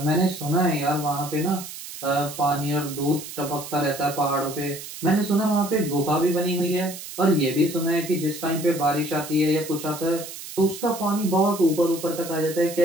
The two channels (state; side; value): noise; right; hiss, 11 dB below the sound